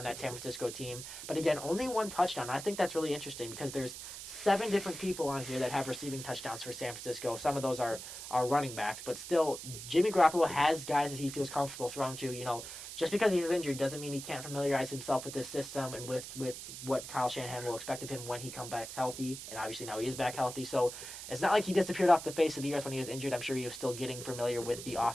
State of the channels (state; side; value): noise; right; hiss, 10 dB below the sound